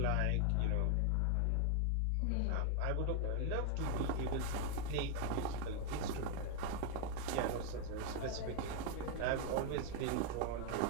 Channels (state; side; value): different; both; correlation 0.00